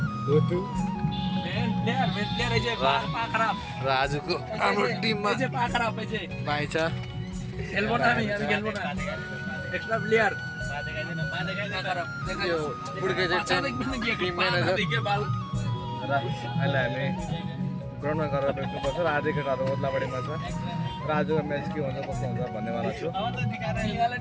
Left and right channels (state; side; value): identical; both; correlation 1.00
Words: धोतु र आजको हाम्रो टिममा भाइ छ एक्स्ट्रा प्लेयर यो बुढ्के चाहिँ टिम म्यानेजर र अहिले हामी ग्राउन्डमा गएर भेट्नुपर्छ र आजको केटाहरू ओद्लाबाडीमा छ र आजको म्याच के हुन्छ कस्तो हुन्छ भन्नेवाला छु